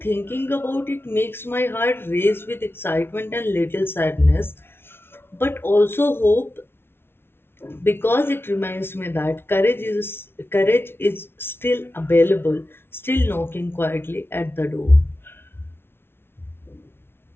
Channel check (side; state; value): right; late; 0.11 ms